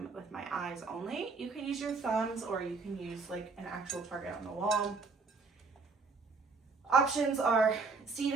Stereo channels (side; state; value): left; quieter; 4.4 dB